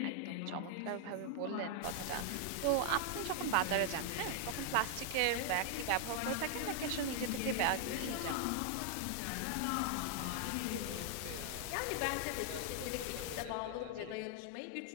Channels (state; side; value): different; both; correlation 0.00